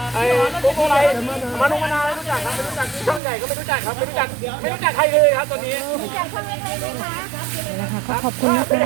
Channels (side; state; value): left; drops out; at 3.2 s